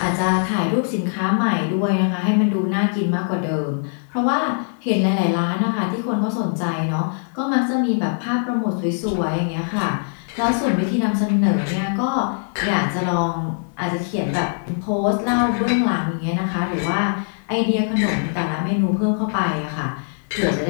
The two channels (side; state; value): right; silent; digital silence